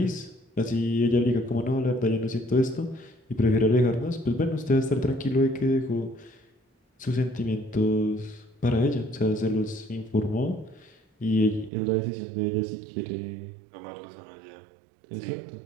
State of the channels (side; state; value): left; drops out; at 11.7 s